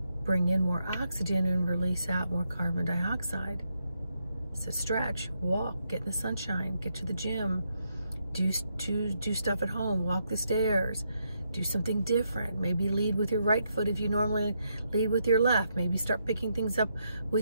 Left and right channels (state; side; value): inverted; both; correlation -0.79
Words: bring in more oxygen and release out more carbon dioxide. So stretch, walk, get in the sunshine, get to the gym, do stuff at home, walk the stairs, do something different. Maybe lead with your right foot if you normally lead with your left. Maybe start picking things up